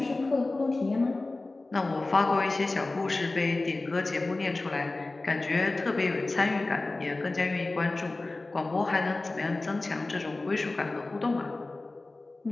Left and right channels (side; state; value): right; quieter; 3.2 dB